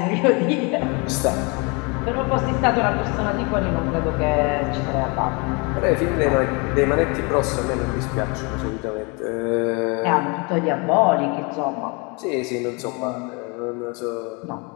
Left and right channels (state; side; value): quieter; right; 30.4 dB